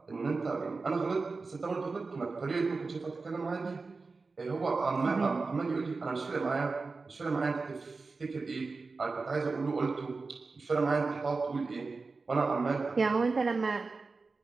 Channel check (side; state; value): left; quieter; 4.1 dB